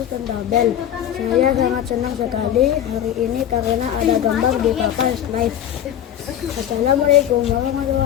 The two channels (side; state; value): right; quieter; 10.5 dB